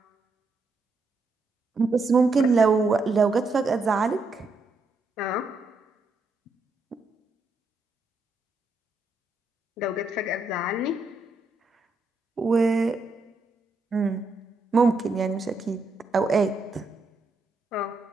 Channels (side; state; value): left; quieter; 3.3 dB